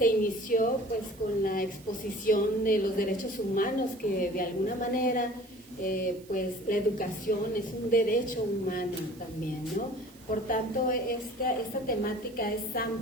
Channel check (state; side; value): noise; right; hiss, 25 dB below the sound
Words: inició pues con la exposición de los derechos humanos, que de alguna manera pues la educación es un derecho humano también, ¿no? Por tanto, esta temática es